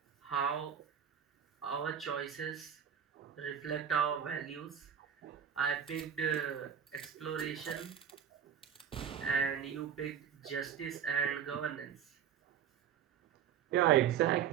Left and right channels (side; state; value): left; quieter; 8.6 dB